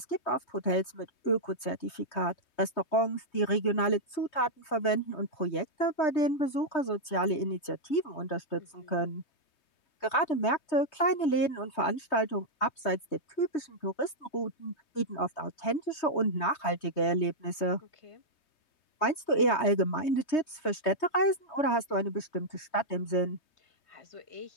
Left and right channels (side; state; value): right; late; 3.2 ms